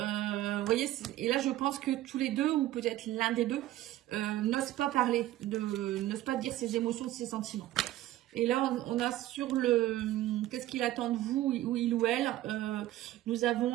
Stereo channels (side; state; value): left; quieter; 14.8 dB